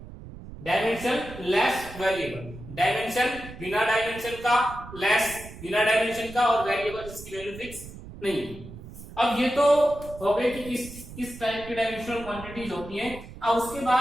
डायमेंशन लेस वेरिएबल, डायमेंशन बिना डायमेंशन का, लेस बिना डायमेंशन का, और वेरिएबल जिसकी वैल्यू फिक्स नहीं। अब ये तो हो गए कि किस टाइप की डायमेंशनल क्वांटिटीज होती हैं। अब उसके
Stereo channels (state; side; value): noise; right; rumble, 15 dB below the sound